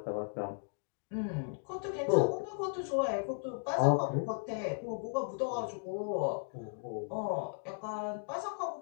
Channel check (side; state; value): right; silent; digital silence